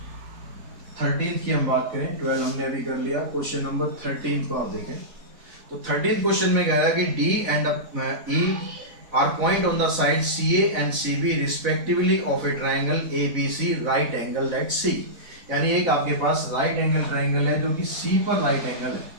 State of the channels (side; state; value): left; late; 4.0 ms